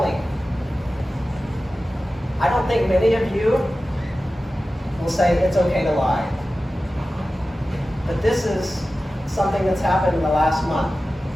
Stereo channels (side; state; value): both; normal; correlation 0.95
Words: I don't think many of you will say it's okay to lie. But this is something that's happened in the last month.